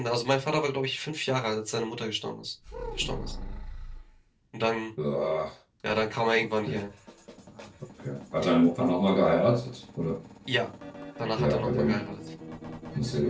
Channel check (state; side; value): identical; both; correlation 1.00